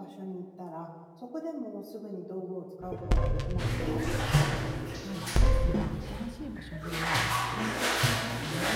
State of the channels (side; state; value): both; identical; correlation 1.00